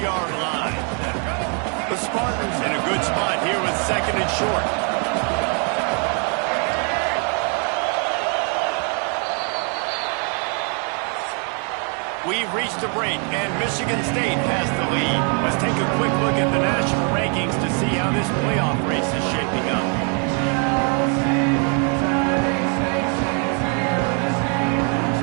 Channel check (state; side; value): quieter; left; 38.8 dB